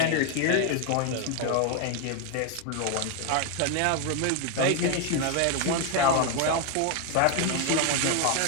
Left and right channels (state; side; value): different; both; correlation 0.01